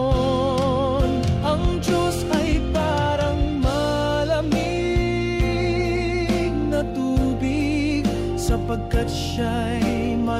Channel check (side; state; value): both; identical; correlation 1.00